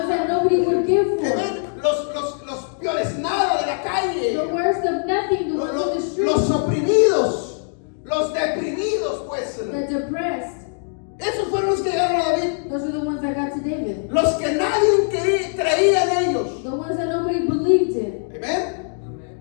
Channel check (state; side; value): silent; right; digital silence